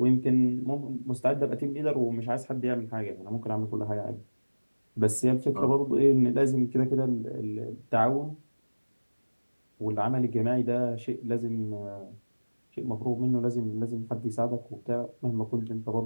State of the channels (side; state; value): both; inverted; correlation -1.00